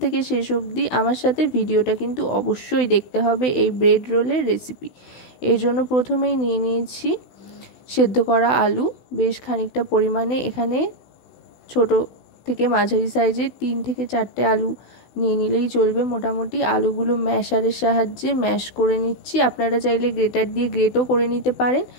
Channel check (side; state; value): right; late; 16 ms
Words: থেকে শেষ অবধি আমার সাথে ভিডিওটা কিন্তু অবশ্যই দেখতে হবে এই ব্রেড রোলের রেসিপি। এর জন্য প্রথমেই নিয়ে নিয়েছি সেদ্ধ করা আলু বেশ খানিকটা পরিমাণে। এখানে ছোট থেকে মাঝারি সাইজের 3 থেকে 4টে আলু নিয়ে নিলেই চলবে। মোটামুটি আলুগুলো ম্যাশারের সাহায্যে ম্যাশ করে নিচ্ছি। আপনারা চাইলে গ্রেটার দিয়ে গ্রেটও করে নিতে পারেন,